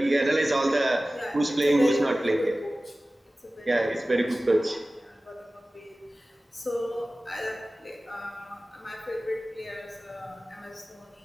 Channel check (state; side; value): normal; both; correlation 0.97